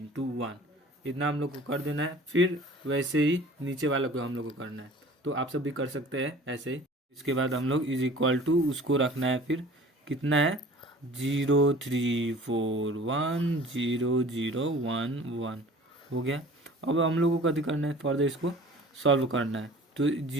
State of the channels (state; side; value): normal; both; correlation 0.46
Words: 1, इतना हम लोग को कर देना है। फिर वैसे ही नीचे वाला को हम लोग को करना है, तो आप सब भी कर सकते हैं ऐसे ही। इसके बाद हम लोग इज इक्वल टू उसको रखना है, फिर कितना है 0 3 4 1 0 0 1 1 हो गया। अब हम लोग को कभी करना है, फर्दर इसको सॉल्व करना है। तो